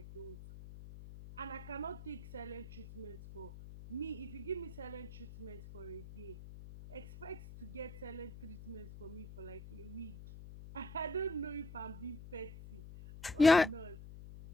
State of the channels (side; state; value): left; noise; hum, 13 dB below the sound